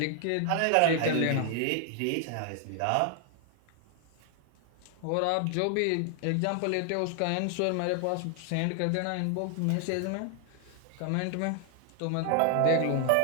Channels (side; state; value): both; different; correlation 0.00